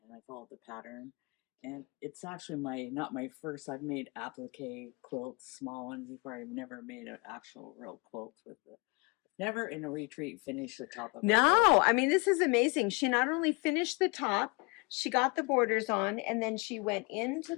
and I followed the pattern. And it's actually not my first. I've made applique quilts, small ones before. I've never made an actual real quilt with it. Never in a retreat finished the top of a quilt. No, I mean, this is amazing. She not only finished the top, she got the borders on, and then she went into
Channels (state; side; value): quieter; right; 28.5 dB